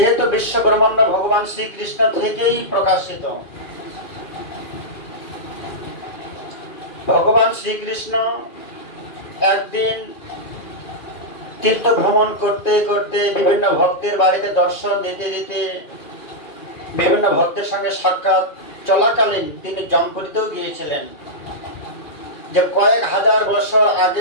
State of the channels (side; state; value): right; late; 2.4 ms